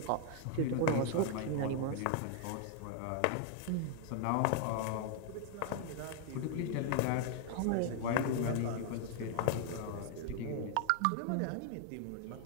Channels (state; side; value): different; both; correlation 0.00